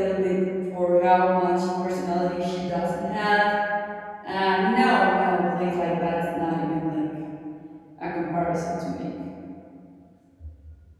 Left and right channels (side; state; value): both; identical; correlation 1.00